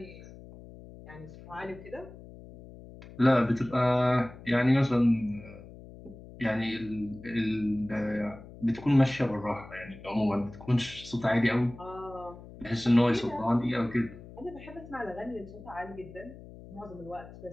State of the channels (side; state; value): left; noise; hum, 17 dB below the sound